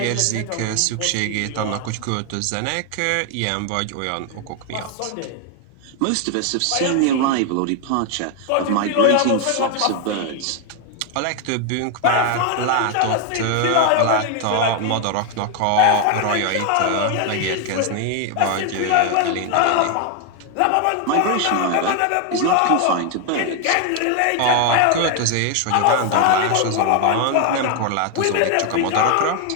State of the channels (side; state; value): both; different; correlation 0.01